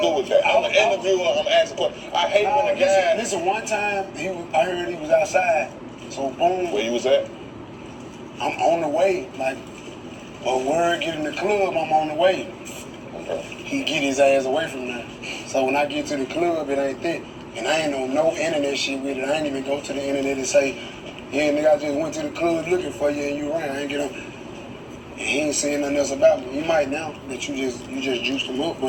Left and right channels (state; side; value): identical; both; correlation 1.00